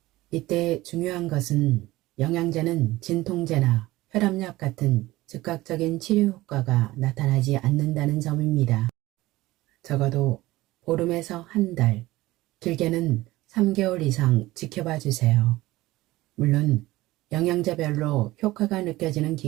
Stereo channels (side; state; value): left; quieter; 18.1 dB